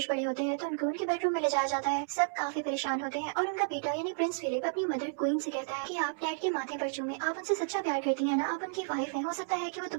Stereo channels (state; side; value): silent; left; 56 dB below the other